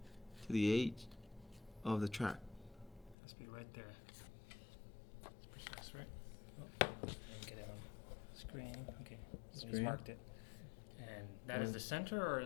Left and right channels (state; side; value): drops out; right; at 3.2 s